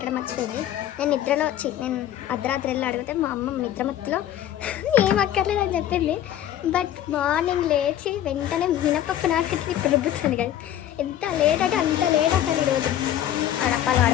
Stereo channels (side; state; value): right; quieter; 11.6 dB